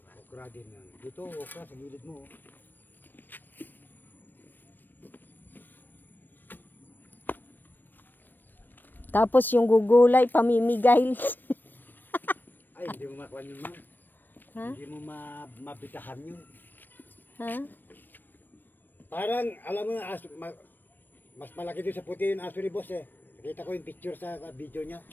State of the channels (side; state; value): right; late; 0.092 ms